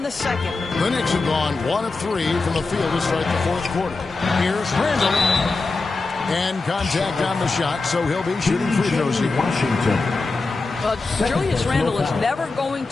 the second. The Knicks have gone 1 of 3 from the field to start the fourth quarter. Here's Randall. And contact on the shot, so he'll be shooting free throws here. Washington. Julius Randle is never going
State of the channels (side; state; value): right; quieter; 3.7 dB